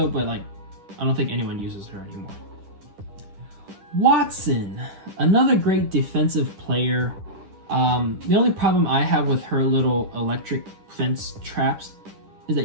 but like I don't think anyone uses her anymore. Wattson, another great defensive player. The only problem I have with her little electric fence traps is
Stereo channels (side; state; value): left; late; 10 ms